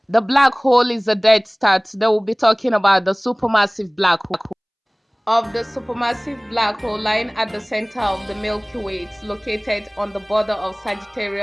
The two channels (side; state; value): both; identical; correlation 1.00